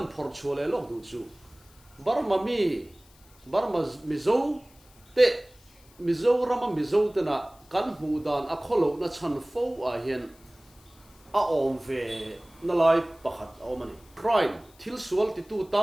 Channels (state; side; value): noise; left; hiss, 28 dB below the sound